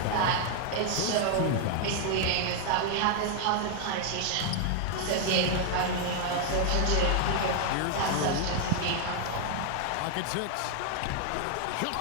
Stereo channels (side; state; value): both; different; correlation 0.00